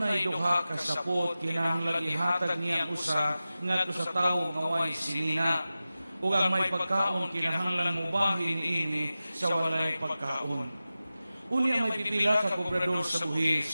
duha ka sapot kinahanglan ihatag niya usa ngadto sa tawo nga way sinina. Ug ang may pagkaon kinahanglan mubahin niini sa walay pagkaon. Unya may pipila ka kobrador sa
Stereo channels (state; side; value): inverted; both; correlation -0.95